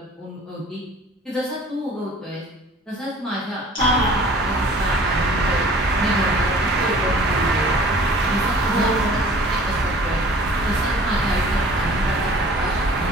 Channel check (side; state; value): both; normal; correlation 0.49